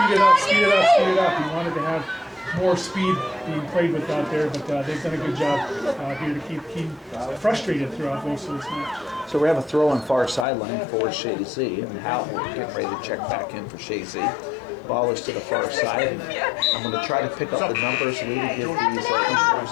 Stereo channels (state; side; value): drops out; right; at 10.5 s